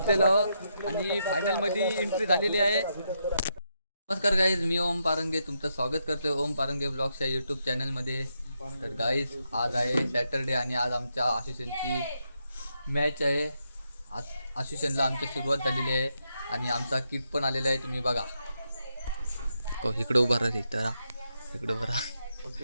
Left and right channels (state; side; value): inverted; both; correlation -0.81